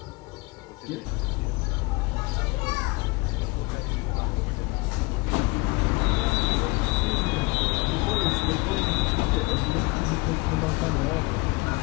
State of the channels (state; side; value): quieter; right; 25.5 dB